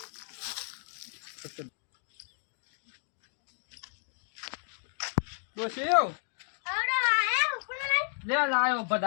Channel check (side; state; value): right; silent; digital silence